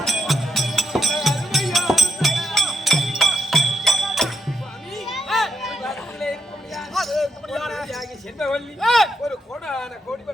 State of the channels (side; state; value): both; normal; correlation 0.80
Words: ஒரு கோடான கோடி